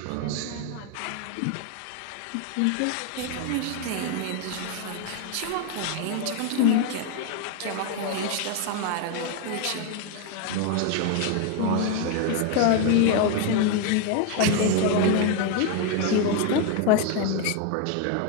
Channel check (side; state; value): both; different; correlation 0.01